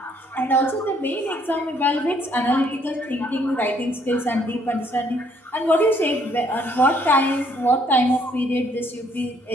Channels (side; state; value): both; normal; correlation 0.66